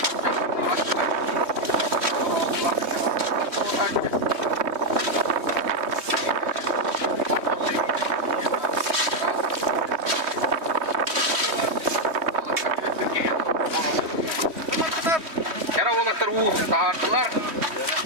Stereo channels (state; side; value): late; left; 3.1 ms